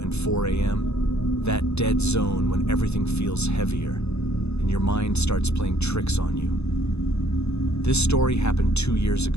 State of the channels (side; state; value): right; late; 0.80 ms